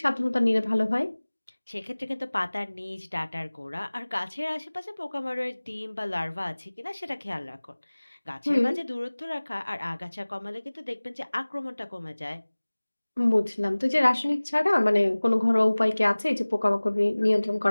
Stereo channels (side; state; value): both; inverted; correlation -1.00